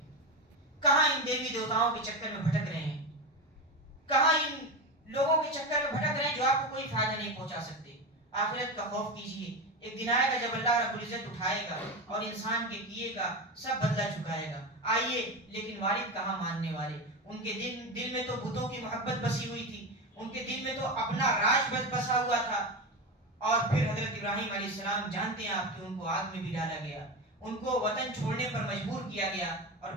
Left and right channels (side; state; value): both; normal; correlation 0.19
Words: کہاں ان دیوی دیوتاؤں کے چکر میں بھٹک رہے ہیں، کہاں ان لوگوں کے چکر میں بھٹک رہے ہیں جو آپ کو کوئی فائدہ نہیں پہنچا سکتے۔ آخرت کا خوف کیجئے، ایک دن آئے گا جب اللہ رب العزت اٹھائے گا اور انسان کے کیے کا سب بدلہ چکائے گا۔ آئیے، لیکن والد کہاں ماننے والے، ان کے دل میں تو بتوں کی محبت بسی ہوئی تھی، ان کے دل میں تو اپنا راج بسا ہوا تھا۔ اور پھر حضرت ابراہیم علیہ السلام جانتے ہیں آپ کہ ان کو آگ میں بھی ڈالا گیا، ان کو وطن چھوڑنے پر مجبور کیا گیا، اور